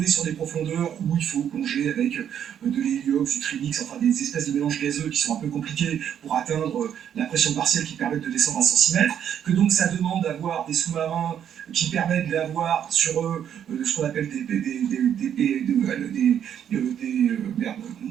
sur des profondeurs où il faut plonger avec de l'héliox, du trimix, enfin des espèces de mélanges gazeux qui sont un peu compliqués pour atteindre la pression partielle qui permet de descendre à 100 cm, que donc ça demande d'avoir des sous-marins qui permettent d'avoir sur eux ce qu'on appelle des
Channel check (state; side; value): quieter; left; 9.3 dB